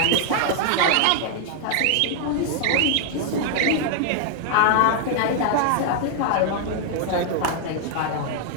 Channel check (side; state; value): both; different; correlation 0.00